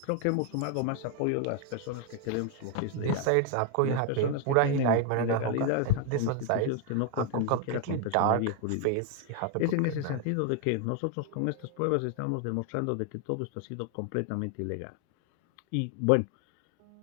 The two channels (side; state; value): both; different; correlation 0.01